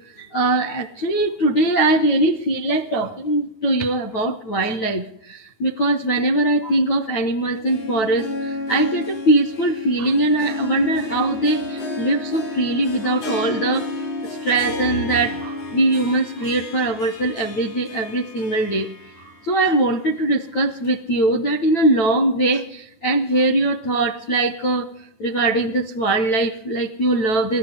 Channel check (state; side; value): late; right; 9.1 ms